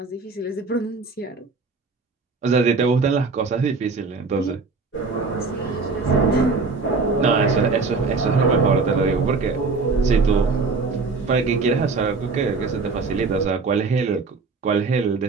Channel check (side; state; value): left; quieter; 4.2 dB